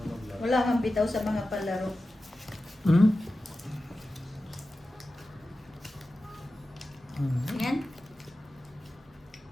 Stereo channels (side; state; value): both; normal; correlation 0.94